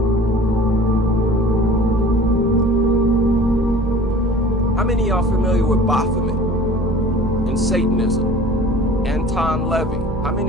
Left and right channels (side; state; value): both; normal; correlation 0.44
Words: How many of y'all familiar with Baphomet and Satanism? Anton Levy. How